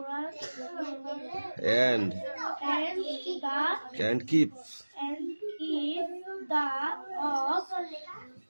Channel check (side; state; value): both; inverted; correlation -1.00